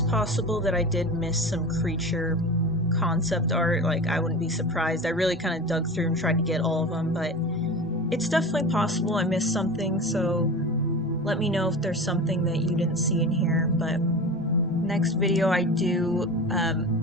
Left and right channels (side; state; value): both; normal; correlation 0.31